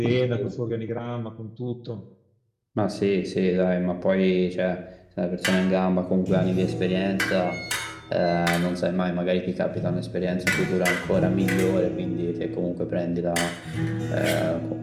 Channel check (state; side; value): identical; both; correlation 1.00